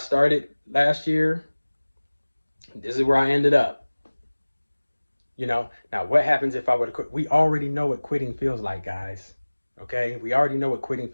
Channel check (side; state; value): both; inverted; correlation -1.00